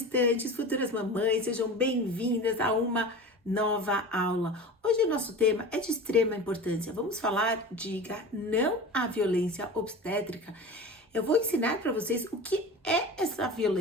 futuras mamães, sejam bem-vindas a uma nova aula. Hoje o nosso tema é de extrema importância. Vamos falar diga não à violência obstétrica. Eu vou ensinar para vocês o que é essa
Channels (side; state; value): both; normal; correlation 0.33